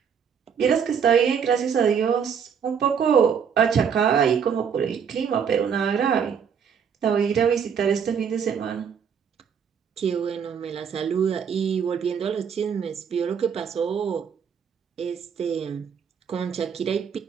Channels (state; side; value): quieter; left; 7.2 dB